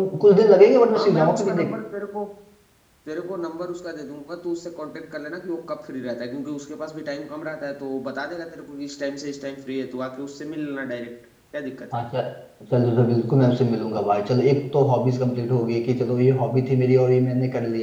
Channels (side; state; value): both; identical; correlation 1.00